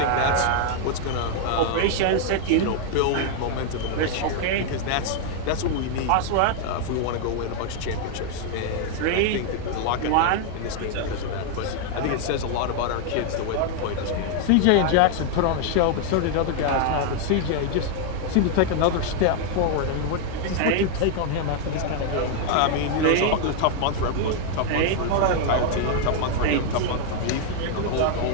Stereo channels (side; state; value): both; different; correlation 0.00